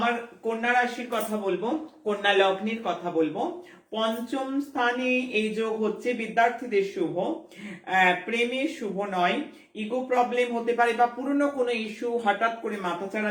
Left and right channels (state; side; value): identical; both; correlation 1.00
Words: কন্যা রাশির কথা বলবো, কন্যা লগ্নের কথা বলবো। পঞ্চম স্থানে এই যোগ হচ্ছে বিদ্যার্থীদের শুভ, প্রেমে শুভ নয়, ইগো প্রবলেম হতে পারে বা পুরনো কোনো ইস্যু হঠাৎ করে মাথাচাড়া